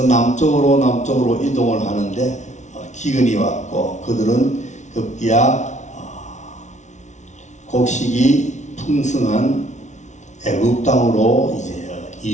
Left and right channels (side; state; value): right; late; 0.34 ms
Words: 남쪽으로 이동을 하는데 기근이 왔고 그들은 급기야 곡식이 풍성한 애굽 땅으로 이제